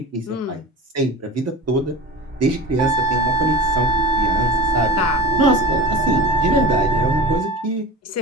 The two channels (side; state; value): both; normal; correlation 0.33